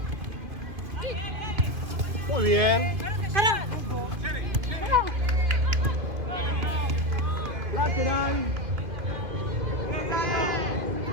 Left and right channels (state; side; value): late; left; 2.5 ms